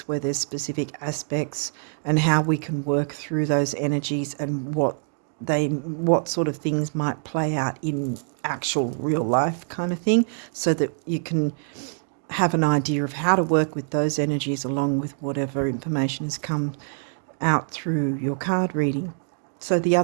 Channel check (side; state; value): left; silent; digital silence